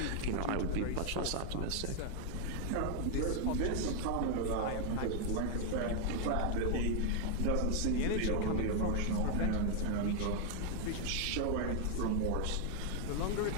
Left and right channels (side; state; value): both; different; correlation 0.00